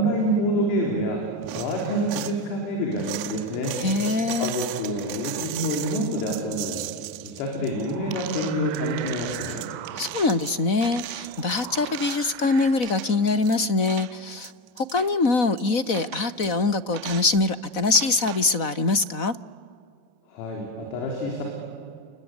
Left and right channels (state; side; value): late; right; 4.0 ms